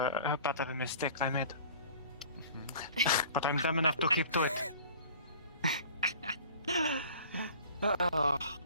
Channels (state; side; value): inverted; both; correlation -0.46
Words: a mistake I made. But I'm dumb enough to keep to it.